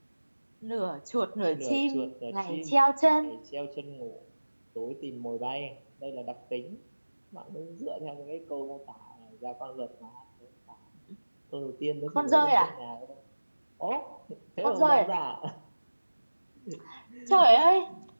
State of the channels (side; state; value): both; inverted; correlation -1.00